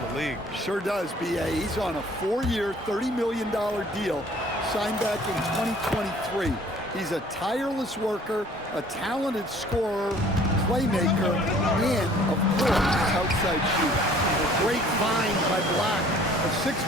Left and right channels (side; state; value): both; normal; correlation 0.54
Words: league. Sure does, B.A. He's on a 4-year, $30 million deal signed back in 2023. He's a tireless worker, a talented scorer, playmaker, and, of course, outside shooter. A great find by Black, a